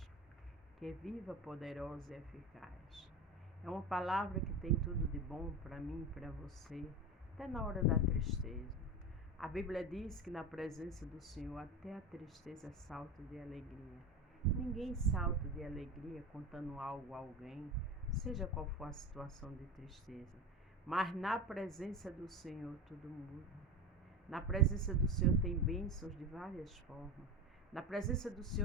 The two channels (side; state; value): both; normal; correlation 0.26